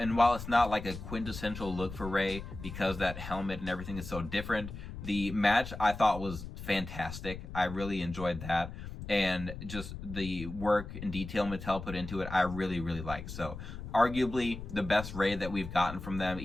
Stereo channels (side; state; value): left; noise; rumble, 10 dB below the sound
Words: while it's not like a quintessential look for Rey, because that helmet and everything is so different, the match I thought was fantastic. I really enjoyed that. And just the work and detail Mattel put into it, I really, really like. So arguably the best Rey that we've gotten from them,